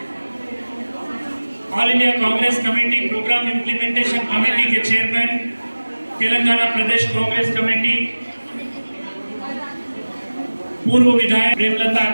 all India Congress committee programme implementation committee के चेयरमैन, तेलंगाना प्रदेश कांग्रेस कमेटी, पूर्व विधायक प्रेमलता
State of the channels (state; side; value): inverted; both; correlation -1.00